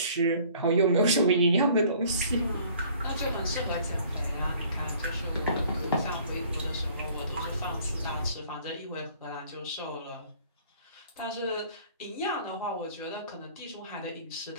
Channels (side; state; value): both; inverted; correlation -0.54